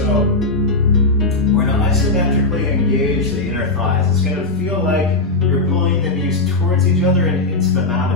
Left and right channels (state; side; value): quieter; right; 3.0 dB